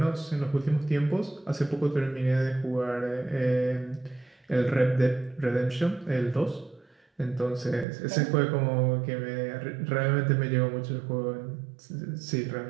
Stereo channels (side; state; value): left; drops out; at 7.9 s